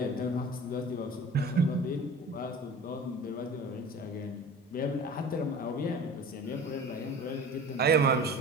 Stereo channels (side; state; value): both; normal; correlation 0.39